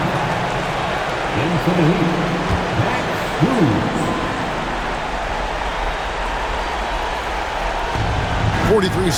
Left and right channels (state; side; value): identical; both; correlation 1.00